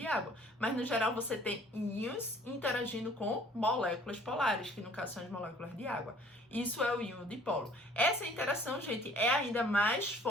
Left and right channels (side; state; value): both; normal; correlation 0.55